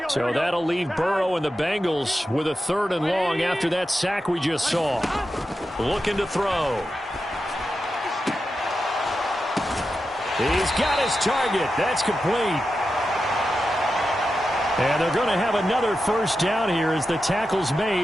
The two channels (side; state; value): both; normal; correlation 0.90